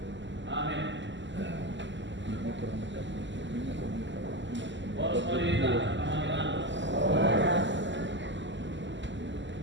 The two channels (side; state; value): left; late; 0.54 ms